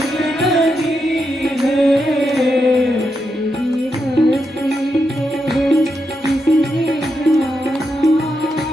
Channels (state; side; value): normal; both; correlation 0.84